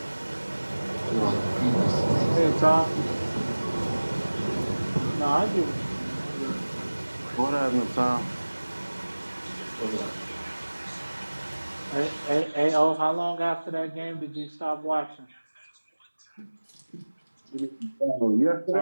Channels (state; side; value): inverted; both; correlation -1.00